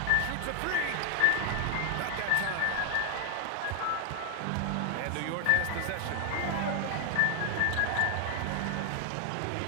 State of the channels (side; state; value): both; different; correlation 0.00